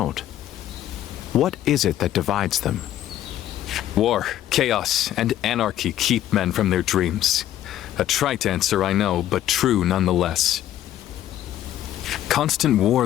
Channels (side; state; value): right; quieter; 12.5 dB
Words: what is it that divides them? War, chaos, and anarchy keep men from their dreams. A trite answer, I know, but true nonetheless. Constant war